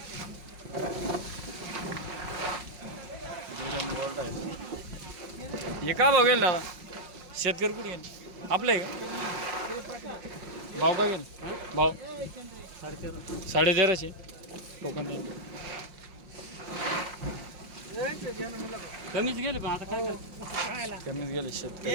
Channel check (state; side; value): late; left; 5.6 ms